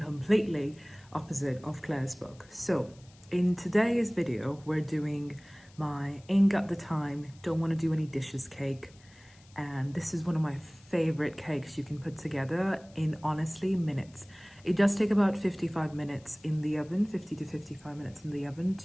opposite of Claire's book. So in today's video, we're doing my ain't got the time, don't wanna do any dishes cake. And this is one of my favorite cakes you can put together in honestly minutes. It does take about 55 minutes in the oven, 50 to 55 minutes in the oven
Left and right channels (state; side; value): noise; left; hiss, 27 dB below the sound